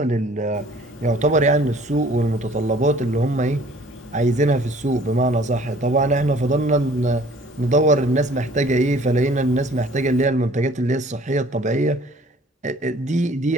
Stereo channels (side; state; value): both; normal; correlation 0.53